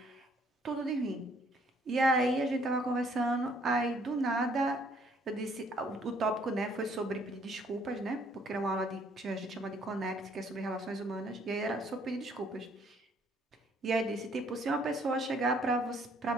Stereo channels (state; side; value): normal; both; correlation 0.64